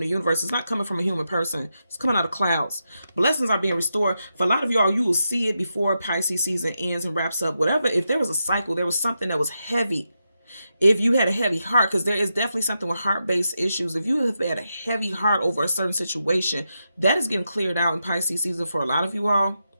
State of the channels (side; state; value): both; inverted; correlation -0.86